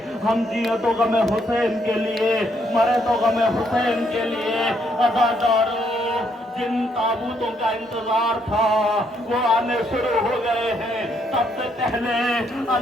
हम जिए तो गम हुसैन के लिए, मरे तो गम हुसैन के लिए। अदादारों, जिन ताबूतों का इंतजार था वो आने शुरू हो गए हैं। सबसे पहले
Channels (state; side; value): normal; both; correlation 0.72